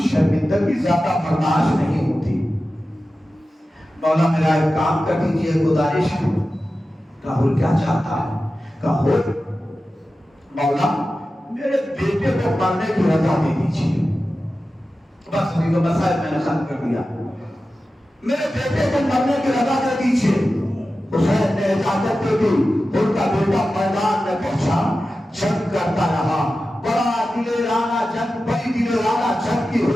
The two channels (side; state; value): both; normal; correlation 0.94